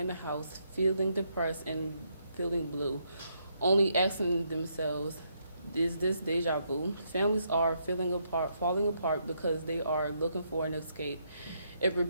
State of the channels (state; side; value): inverted; both; correlation -0.76